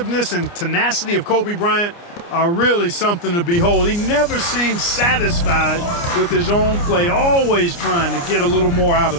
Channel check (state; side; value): late; right; 29 ms